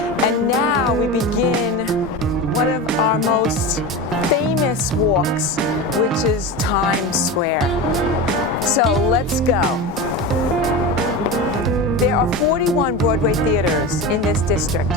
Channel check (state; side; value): normal; both; correlation 0.25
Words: and now we begin one of our most famous walks, which is Times Square. So let's go. There are 41 Broadway theaters in this district.